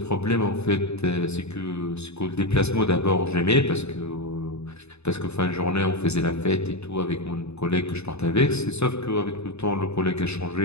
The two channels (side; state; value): right; late; 0.80 ms